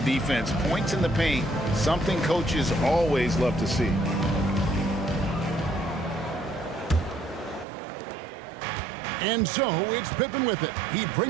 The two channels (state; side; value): drops out; left; at 7.7 s